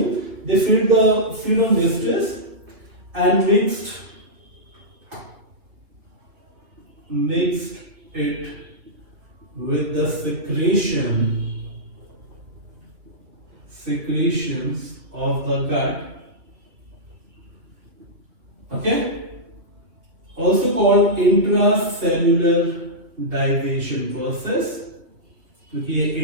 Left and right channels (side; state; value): left; late; 2.8 ms